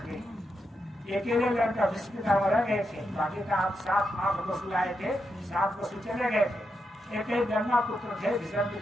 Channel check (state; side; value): normal; both; correlation 0.84